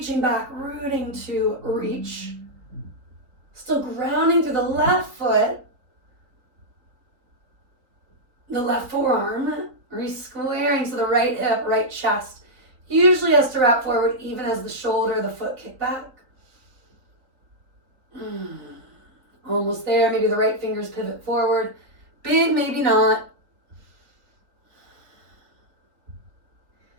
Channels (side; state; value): left; late; 3.7 ms